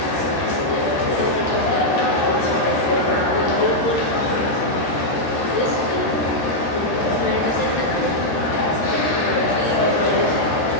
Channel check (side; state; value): right; late; 13 ms